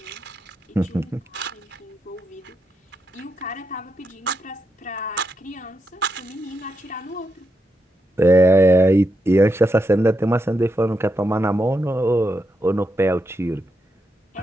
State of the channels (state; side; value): normal; both; correlation 0.83